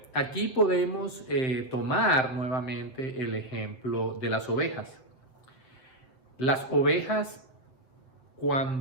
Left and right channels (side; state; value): right; late; 7.7 ms